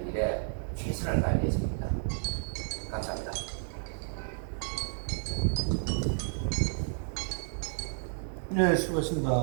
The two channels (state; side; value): silent; left; digital silence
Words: 일에 최선을 다할 예정입니다. 감사합니다. 네,